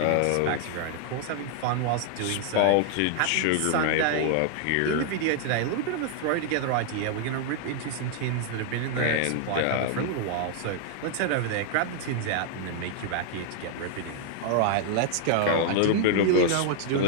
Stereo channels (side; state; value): both; different; correlation 0.00